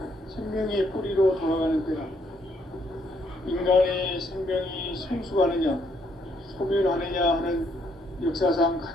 생명의 뿌리로 돌아가는 때다. 인간의 생명이 성숙하느냐, 소멸하느냐 하는 역사상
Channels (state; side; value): normal; both; correlation 0.71